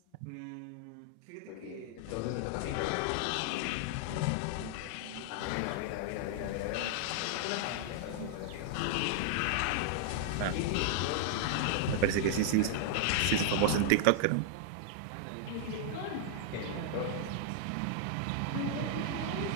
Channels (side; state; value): both; different; correlation -0.01